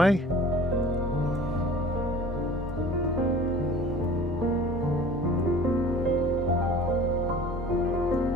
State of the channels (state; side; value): normal; both; correlation 0.45